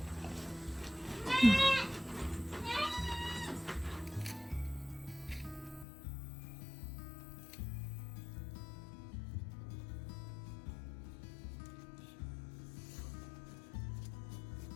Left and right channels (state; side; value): drops out; right; at 5.9 s